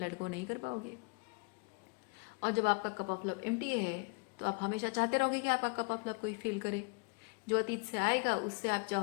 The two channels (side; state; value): right; quieter; 30.9 dB